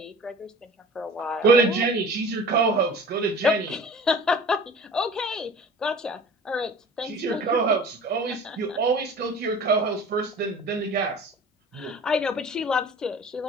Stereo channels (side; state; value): both; normal; correlation 0.42